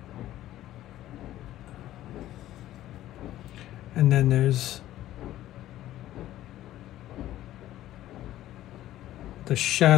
And then there's the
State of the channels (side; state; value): right; quieter; 13.9 dB